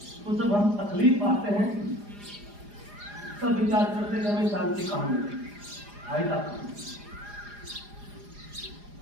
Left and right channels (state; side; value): late; left; 4.9 ms